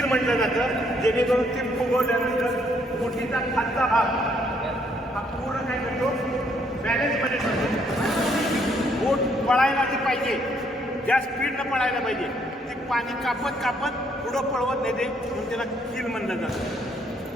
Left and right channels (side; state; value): both; normal; correlation 0.69